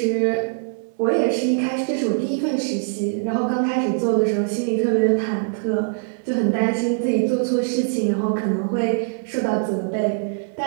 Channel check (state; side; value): silent; left; digital silence